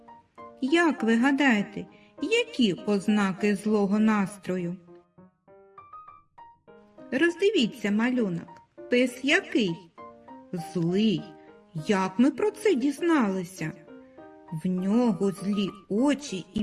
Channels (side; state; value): both; identical; correlation 1.00